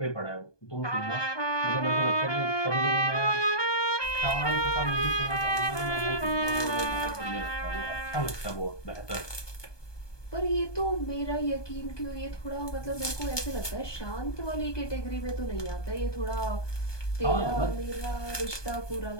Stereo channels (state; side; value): late; right; 1.2 ms